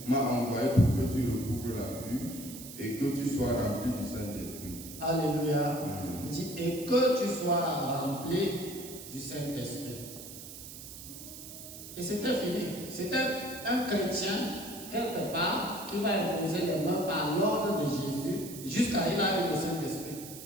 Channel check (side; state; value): right; noise; hiss, 13 dB below the sound